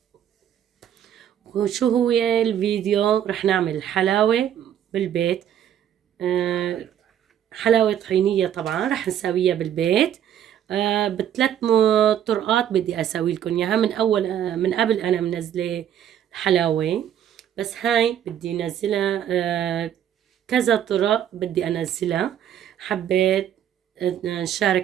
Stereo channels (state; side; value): quieter; left; 10.1 dB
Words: وشو هو الفيديو؟ رح نعمل حلاوة بالبيت، حلاوة طحينية طبعا رح نسويها بالبيت. بثلاث طرقات بدي اسوي لكم اياها. من قبل انا منزله حلاوة، بس هاي بدي انزلها كذا طرق بدي انزلها. حبيت